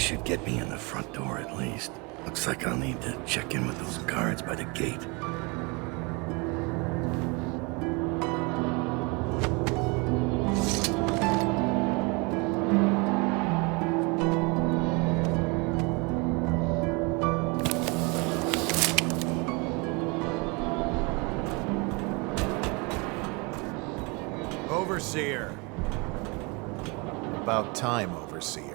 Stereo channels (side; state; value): left; quieter; 29.0 dB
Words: should get me in the front door at least. Looks like I'll need to check in with those guards by the gate. Overseer. About time, Overseer.